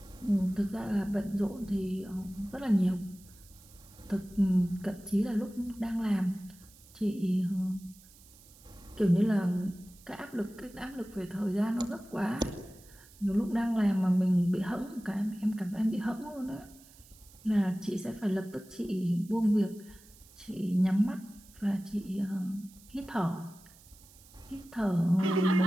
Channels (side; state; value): right; noise; hiss, 24 dB below the sound